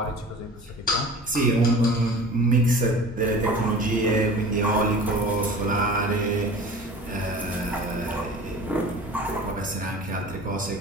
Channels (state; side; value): normal; both; correlation 0.40